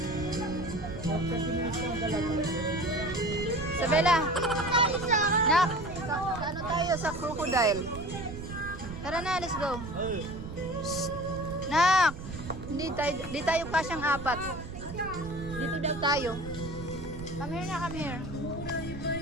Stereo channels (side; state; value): right; noise; rumble, 10 dB below the sound